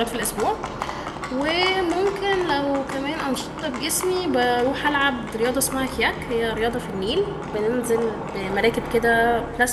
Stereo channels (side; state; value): both; identical; correlation 1.00